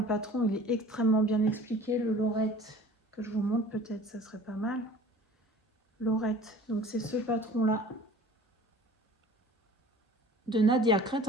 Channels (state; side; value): normal; both; correlation 0.46